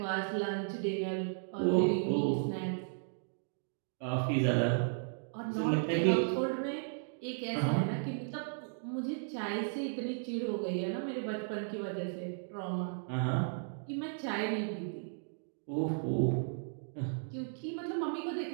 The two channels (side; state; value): left; silent; digital silence